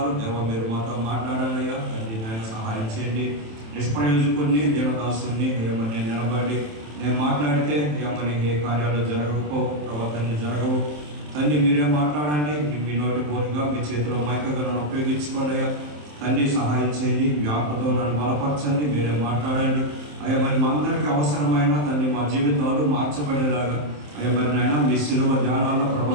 దేవా మీరు మాతో మాట్లాడాలి అయ్యా తండ్రి నాయన సహాయం చేయండి. నిష్ప్రయోజకుడిని దేవదాసుని అయ్యమ్మని నేను నిలబడి నేను మాట్లాడితే అయ్యమ్మని ఏ కార్యాలు జరగకపో, ప్రవర్తనలు జరగవు. తండ్రి మీరే మాట్లాడండి. మీ నోటి పోరుగా మీ చేతిలో మైకగా నన్ను ఉపయోగించుకోండి అయ్యా తండ్రి. సహాయం చేయండి, మీ ఆత్మతో నన్ను బలపరచండి, మీరే మాట్లాడండి అయ్యా. మరి మా అందరికీ అవసరమైన తండ్రి మా జీవితాలు మార్చబడేలాగా అయ్యా మరి నాయన మీ శిలువ ధ్యానాల్లో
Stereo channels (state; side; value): late; left; 27 ms